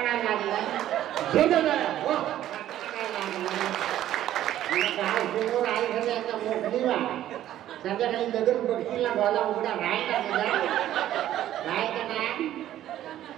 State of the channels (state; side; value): quieter; left; 12.5 dB